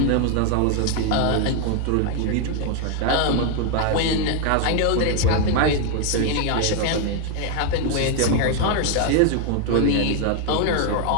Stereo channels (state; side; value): different; both; correlation 0.00